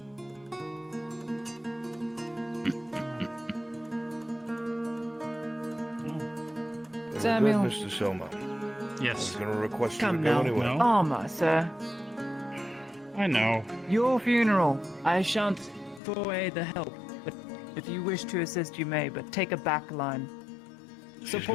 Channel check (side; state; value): right; drops out; at 16.0 s